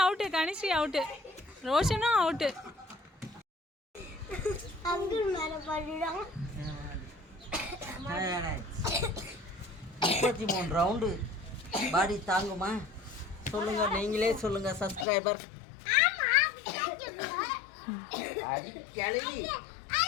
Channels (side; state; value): right; drops out; at 15.1 s